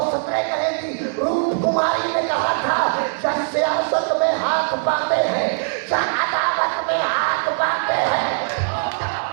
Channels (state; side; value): silent; left; digital silence